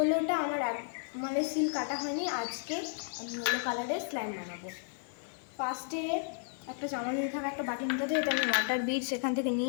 আমার মানে সিল কাটা হয়নি, আজকে আমি ইয়েলো কালারের স্ল্যাম বানাবো। ফার্স্টে একটা চামচ নিতে হবে, একটা বাটি নিতে হবে, এটা আমি ওয়াটার বিটস এখান থেকে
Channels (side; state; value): right; silent; 56 dB below the other